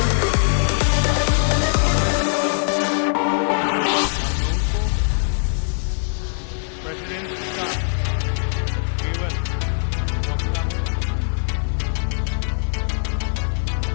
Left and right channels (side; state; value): right; silent; 62 dB below the other